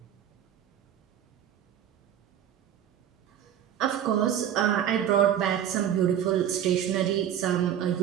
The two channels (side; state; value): left; quieter; 10.0 dB